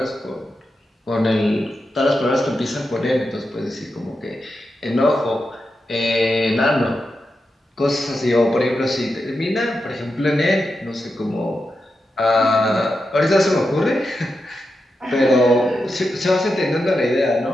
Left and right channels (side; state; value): both; normal; correlation 0.88